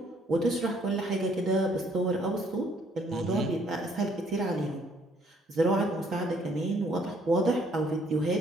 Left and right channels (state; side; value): normal; both; correlation 0.64